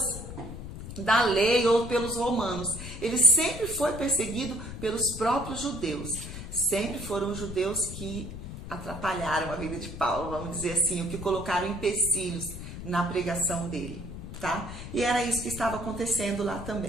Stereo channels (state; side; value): noise; left; rumble, 10 dB below the sound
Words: da lei ou pelos romanos. Ele sempre foi perseguido pelos próprios judeus. Sempre foram os judeus que atrapalharam a vida de Paulo, vamos dizer assim, o que colocaram empecilhos na pregação dele, tá? E era isso que estava acontecendo lá